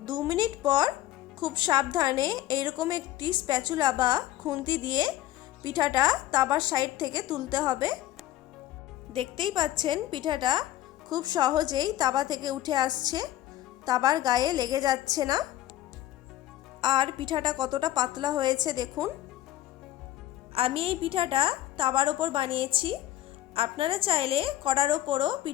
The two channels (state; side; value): quieter; right; 14.0 dB